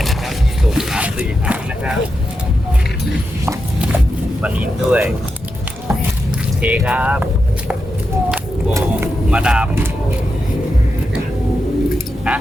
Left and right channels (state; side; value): normal; both; correlation 0.87